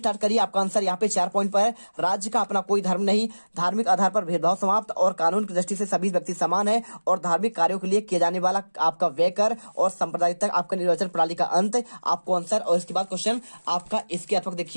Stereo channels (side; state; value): both; inverted; correlation -1.00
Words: करिए। आपका आंसर यहाँ पे 4 पॉइंट पर है। राज्य का अपना कोई धर्म नहीं, धार्मिक आधार पर भेदभाव समाप्त और कानून की दृष्टि से सभी व्यक्ति समान है और धार्मिक कार्यों के लिए किए जाने वाला आपका व्यय कर और सांप्रदायिक तक आपका निर्वाचन प्रणाली का अंत, आपको आंसर। और इसके बाद क्वेश्चन आपका इसके अथवा